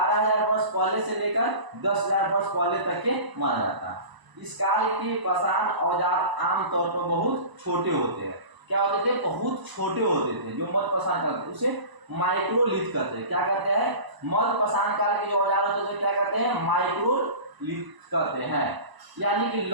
वर्ष पहले से लेकर 10,000 वर्ष पहले तक के माना जाता है। इस काल के पाषाण औजार आमतौर पर बहुत छोटे होते हैं। क्या होते थे? बहुत छोटे होते थे। जो मध्य पाषाण काल उसे माइक्रोलिथ कहते हैं। क्या कहते हैं? मध्य पाषाण काल के जो औजार होते थे क्या कहते हैं? माइक्रोलिथ कहते हैं, यानी कि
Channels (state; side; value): late; left; 1.0 ms